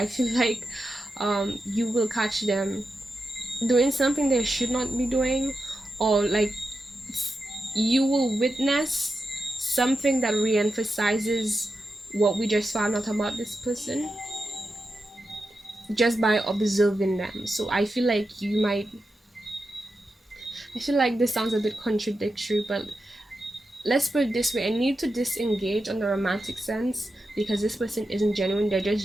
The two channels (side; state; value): both; normal; correlation 0.89